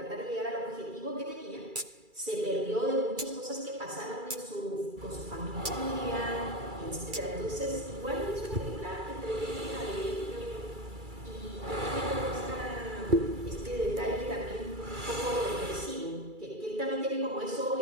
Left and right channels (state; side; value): late; left; 2.3 ms